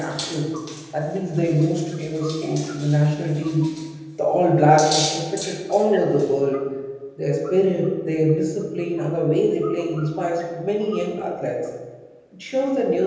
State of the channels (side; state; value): both; identical; correlation 1.00